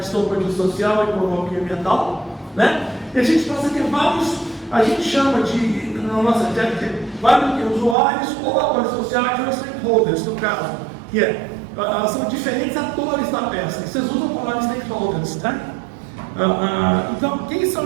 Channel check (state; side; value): drops out; left; at 8.0 s